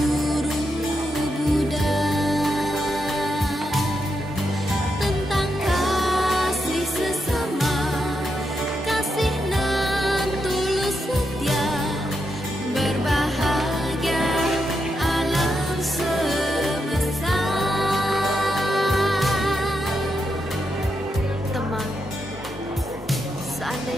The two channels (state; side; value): normal; both; correlation 0.84